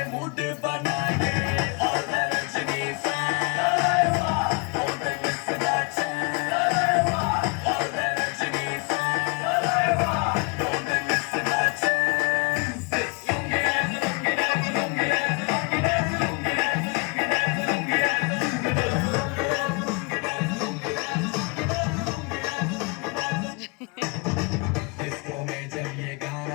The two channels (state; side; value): quieter; right; 32.5 dB